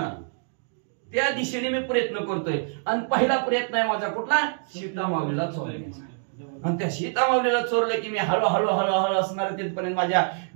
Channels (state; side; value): silent; left; digital silence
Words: त्या दिशेने मी प्रयत्न करतोय. आणि पहिला प्रयत्न आहे माझा कुठला, सीता माऊलीला चोरण्याचा. आणि त्या सीता माऊलीला चोरलं की मी हळूहळू हळूहळू असणार तिथपर्यंत, माझ्या